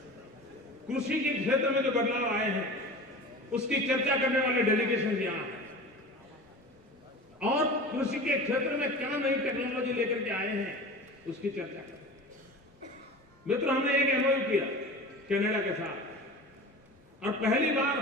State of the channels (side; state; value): both; normal; correlation 0.34